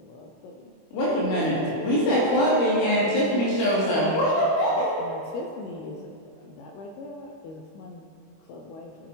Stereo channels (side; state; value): right; late; 25 ms